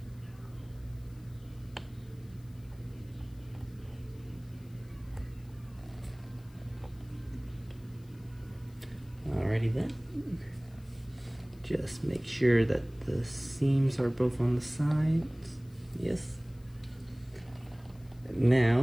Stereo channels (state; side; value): noise; left; hiss, 29 dB below the sound